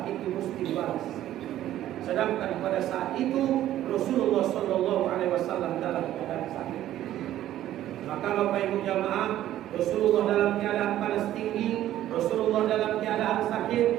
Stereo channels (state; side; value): quieter; left; 13.0 dB